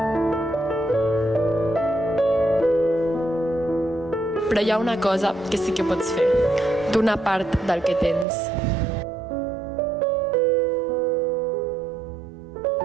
Però hi ha una cosa que sí que pots fer. Donar part del que tens.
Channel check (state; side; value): drops out; left; at 8.2 s